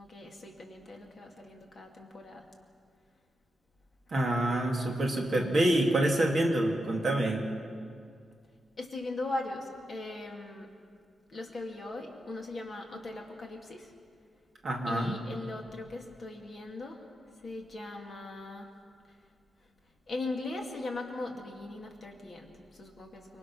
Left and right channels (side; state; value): both; normal; correlation 0.86